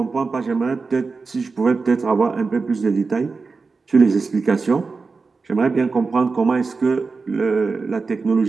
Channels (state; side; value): quieter; left; 4.4 dB